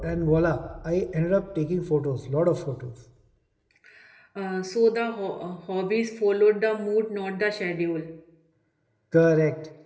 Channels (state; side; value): identical; both; correlation 1.00